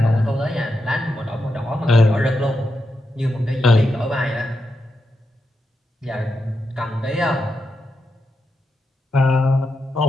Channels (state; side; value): normal; both; correlation 0.86